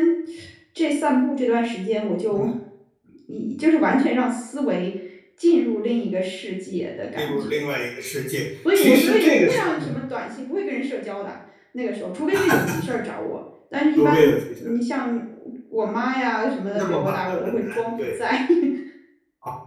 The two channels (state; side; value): identical; both; correlation 1.00